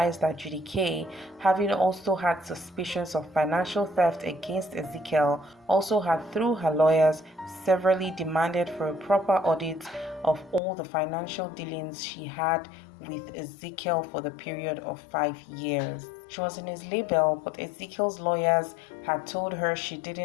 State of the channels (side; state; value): right; drops out; at 10.6 s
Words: that judikay, having also had suspicions of financial theft against Ezekiel, also had through her lawyers severally demanded for a proper audit of all the financial dealings she had with Ezekiel for the period of 5 years. She was in his label, but Ezekiel's lawyers had told her she